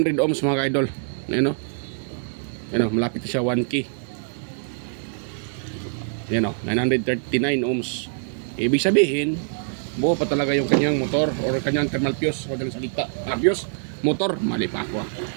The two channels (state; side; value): silent; left; digital silence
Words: ohms mga ka-idol. Ayun o, malapit na siya 1K. Ayun o, 939 ohms. Ibig sabihin buo pa talaga yung kanyang motor or kanyang thermal fuse o dalang salita. Fuse, motor, mali pa ako.